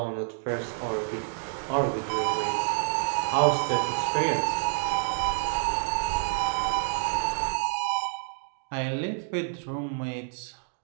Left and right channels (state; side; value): silent; left; digital silence